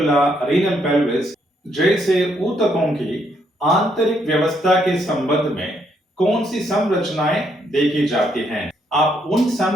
रीनल पेल्विस जैसे ऊतकों की आंतरिक व्यवस्था के संबंध में कौन सी संरचनाएं देखी जाती हैं। आप उन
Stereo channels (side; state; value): both; normal; correlation 0.73